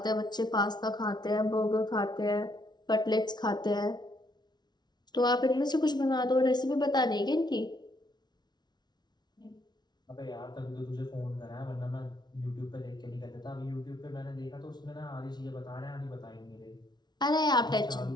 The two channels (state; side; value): late; right; 0.20 ms